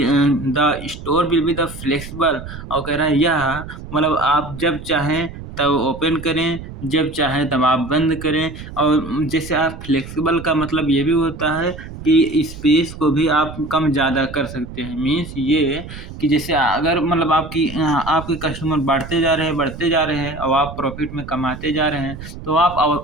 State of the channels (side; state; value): right; noise; rumble, 12 dB below the sound